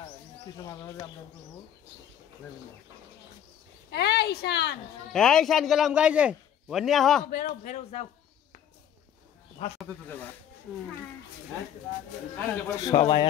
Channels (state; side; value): quieter; right; 9.7 dB